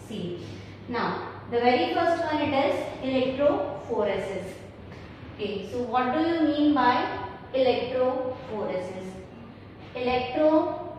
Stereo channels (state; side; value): identical; both; correlation 1.00